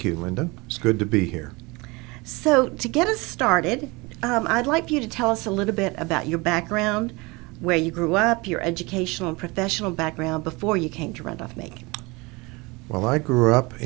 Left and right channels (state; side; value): quieter; left; 25.2 dB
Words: you, Linda. It's good to be here. So, to get us started, I'd like for you to tell us a little bit about your background, where you grew up, your educational and professional background before you came to Randolph-Macon. Well, I grew up